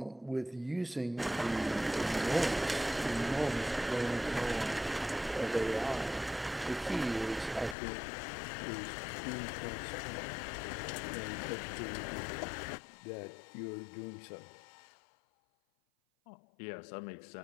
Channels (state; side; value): drops out; right; at 7.8 s